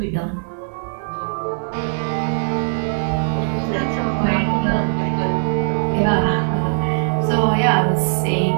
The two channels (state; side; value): silent; left; digital silence